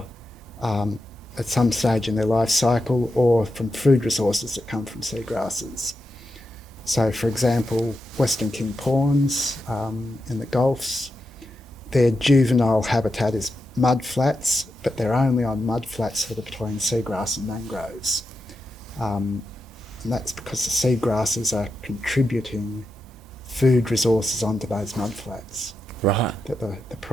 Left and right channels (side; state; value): both; normal; correlation 0.87